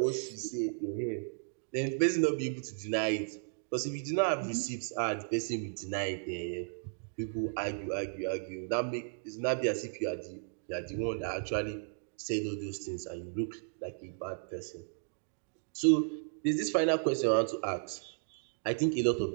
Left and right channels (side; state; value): left; silent; digital silence